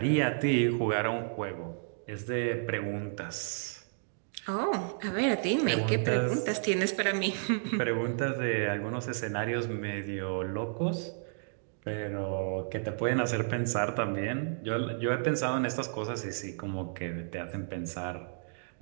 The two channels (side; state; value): left; silent; digital silence